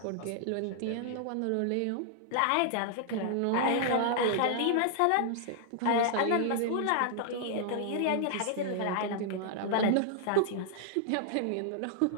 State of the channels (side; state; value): both; different; correlation -0.01